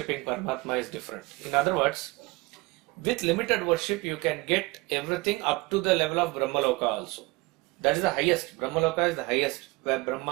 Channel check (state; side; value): quieter; left; 23.6 dB